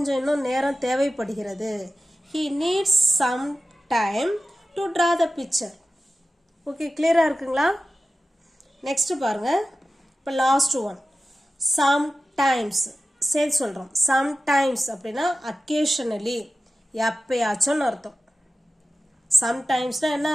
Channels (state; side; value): normal; both; correlation 0.94